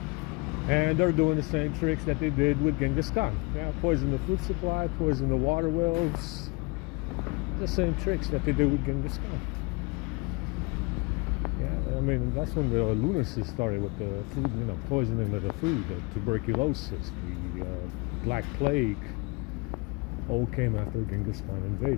And they're doing the same tricks that they did with Genghis Khan. Yeah, poison the food supply, poison the water wells. The same tricks that they did with Genghis Khan. Yeah, I mean, that's when the lunacy started with the food, poisoning of the food, the tuberculosis, the Black Plague, all came after Genghis Khan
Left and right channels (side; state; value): right; quieter; 28.1 dB